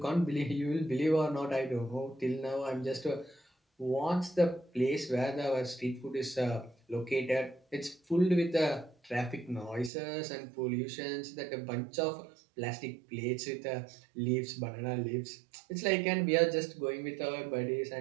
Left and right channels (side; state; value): left; drops out; at 9.9 s